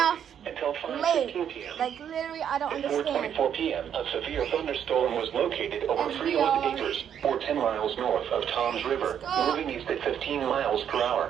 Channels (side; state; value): left; quieter; 9.0 dB